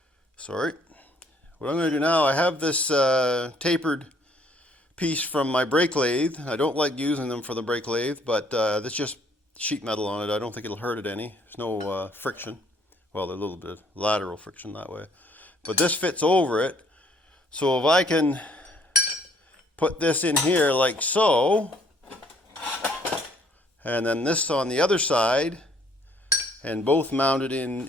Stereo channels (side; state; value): both; normal; correlation 0.63